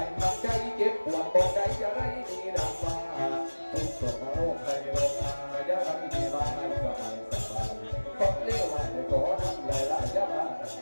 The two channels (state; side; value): inverted; both; correlation -1.00